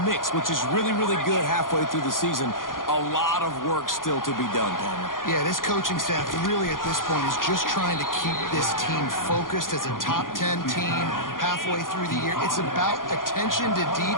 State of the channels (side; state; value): right; late; 0.90 ms